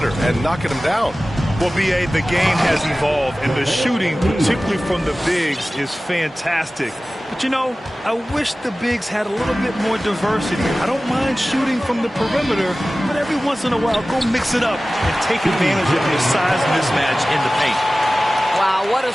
and knocking them down. Well, B.A., the game has evolved, and the shooting, particularly from the bigs, is fantastic. But, you know, I wish the bigs had a little bit more diversity. I don't mind shooting from the perimeter, but every once in a while, go mix it up and take advantage of your size mismatch in the paint. Wow, what a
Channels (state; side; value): normal; both; correlation 0.97